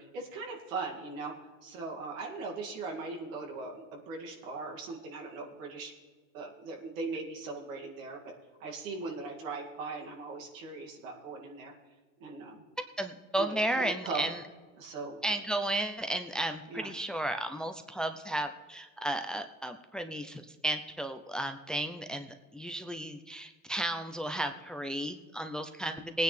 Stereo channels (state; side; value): normal; both; correlation 0.62